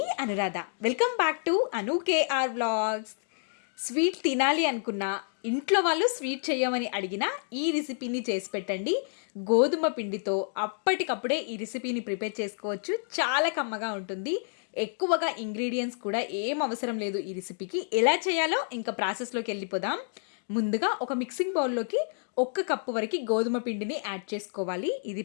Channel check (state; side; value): silent; right; digital silence